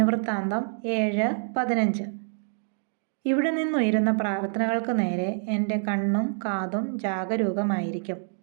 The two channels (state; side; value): silent; left; digital silence